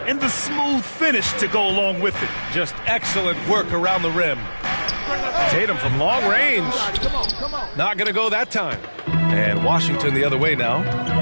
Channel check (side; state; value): both; inverted; correlation -1.00